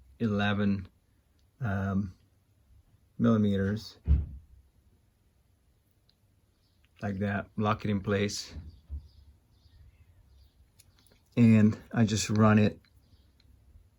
11 millimeters, like that, lock it in place, and I just run it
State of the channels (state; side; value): identical; both; correlation 1.00